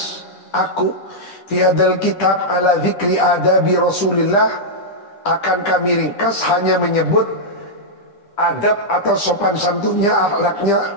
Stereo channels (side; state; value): right; late; 10 ms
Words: aku fi hadal kitab ala zikri adabi Rasulillah, akan kami ringkas hanya menyebut adab atau sopan santunnya,